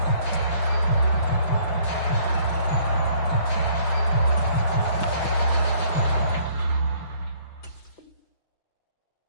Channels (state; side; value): late; right; 5.9 ms